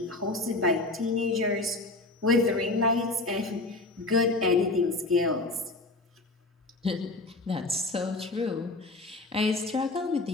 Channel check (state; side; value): quieter; right; 3.0 dB